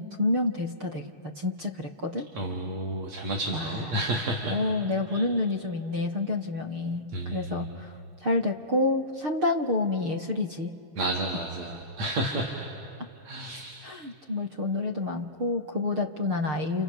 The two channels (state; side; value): late; left; 6.6 ms